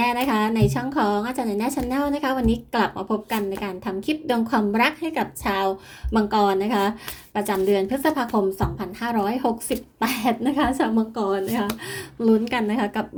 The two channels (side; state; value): both; identical; correlation 1.00